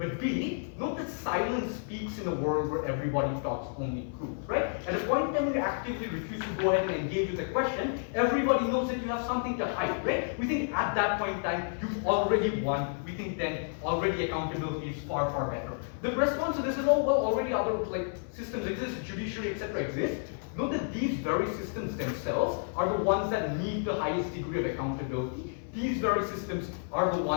B, note that silence speaks in a world where everybody talks only truth, right? At a point in time when you actively refuse to go ahead and engage with a question, everybody knows that you have something to hide, right? We think at that point in time, you've already won. We think then already accountability is far, far better. The response to this is, oh, well, already other like systems exist, judiciary, etc. exist. Note that these very systems themselves are the ones that need the highest degree of accountability. These very systems are the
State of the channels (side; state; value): right; silent; 57 dB below the other